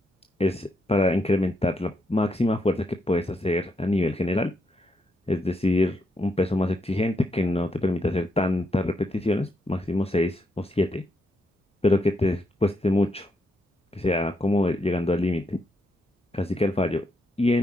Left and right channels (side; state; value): both; normal; correlation 0.79